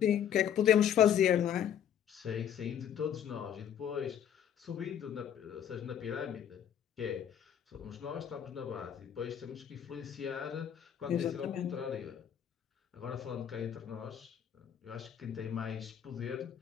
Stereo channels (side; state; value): right; quieter; 9.3 dB